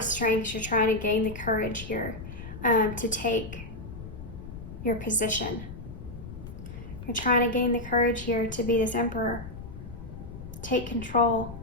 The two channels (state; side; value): noise; left; rumble, 11 dB below the sound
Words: strength, you're trying to gain the courage here to take your position. You're trying to gain the courage here to be this Emperor. Take control.